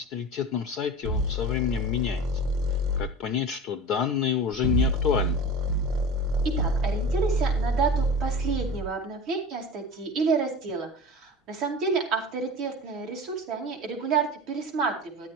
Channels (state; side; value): normal; both; correlation 0.32